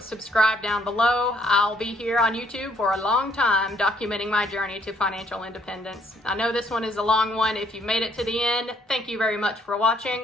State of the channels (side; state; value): both; normal; correlation 0.67